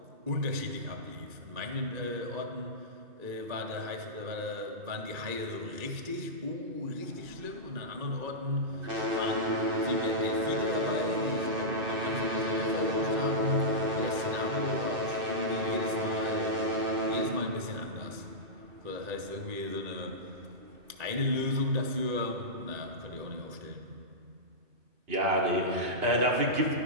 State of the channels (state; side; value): late; left; 1.9 ms